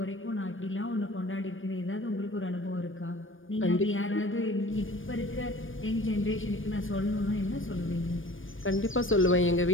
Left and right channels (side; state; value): right; late; 0.58 ms